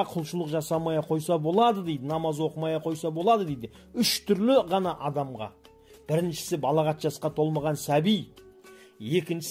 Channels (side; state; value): both; identical; correlation 1.00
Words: құлшылық жасамaya қойса болады дейді, намаз оқымaya қойса болады дейді. Үш түрлі ғана адамға. Біріншісі балағат жасқа толмаған сәби,